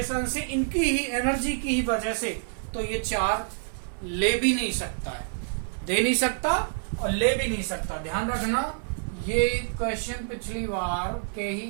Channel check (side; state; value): left; silent; 56 dB below the other